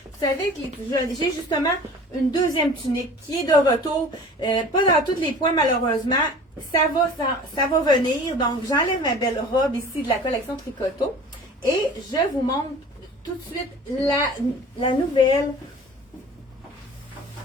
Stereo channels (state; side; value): normal; both; correlation 0.43